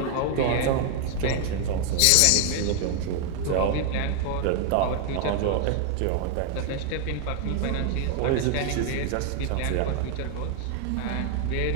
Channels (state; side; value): different; both; correlation 0.00